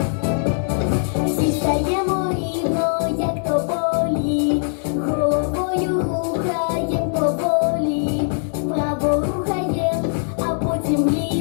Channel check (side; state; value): right; silent; 65 dB below the other